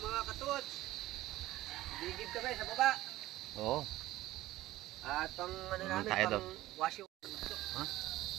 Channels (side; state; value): left; quieter; 16.3 dB